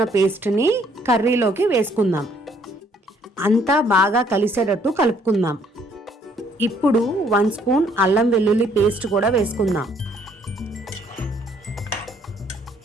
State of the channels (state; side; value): normal; both; correlation 0.65